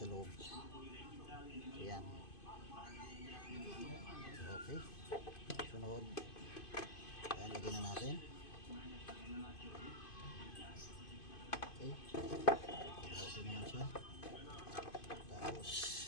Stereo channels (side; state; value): right; late; 2.5 ms